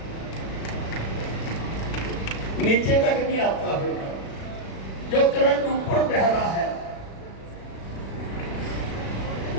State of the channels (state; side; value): late; right; 36 ms